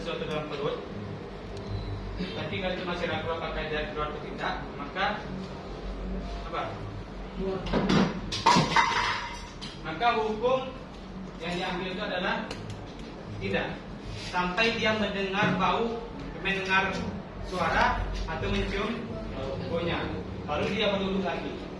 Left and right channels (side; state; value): both; identical; correlation 1.00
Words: dalam perut, tapi kalian itu masih ragu apakah dia keluar atau tidak, maka apa? Maka hukum yang diambil itu adalah tidak, sampai dia mendengar bau, mendengar suara atau mencium baunya, baru dia berwudu lagi.